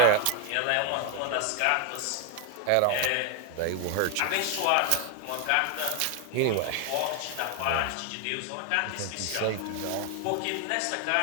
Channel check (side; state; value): both; different; correlation 0.01